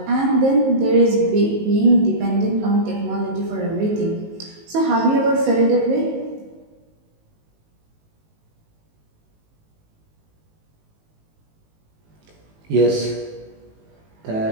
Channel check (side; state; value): left; late; 19 ms